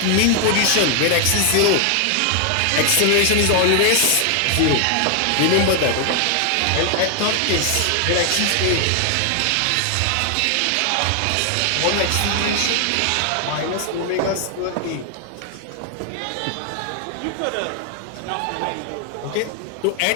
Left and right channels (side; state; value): both; different; correlation 0.00